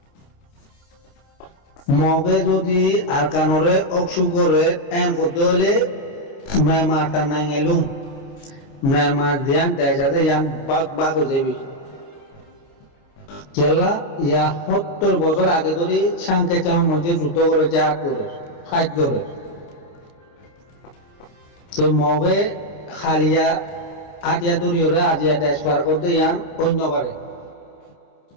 মগে যদি আরকানরে অক্সুগরে এম করতে হলে মেমারটা নাই গেলুম মেমার দিয়ান দেশাতে ইয়ান বাঘ বাঘ হয়ে যাবি কেল্লা ইয়া 70 বছর আগে ধরে সাংকে চাও মধ্যে যুদ্ধ করে জাত করে ফাইট করে তো মগে খালিয়া আটিয়া দরিয়রে আজিয়া দেশ পার করতে ইয়ান অন্যবারে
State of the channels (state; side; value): late; right; 29 ms